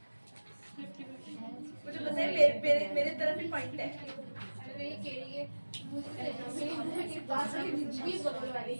मुझे पता है मेरे तरफ ही पॉइंट है। अरे ये केड़ी है, मुझे पास वाली दीदी भी बगल वाली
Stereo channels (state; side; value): inverted; both; correlation -1.00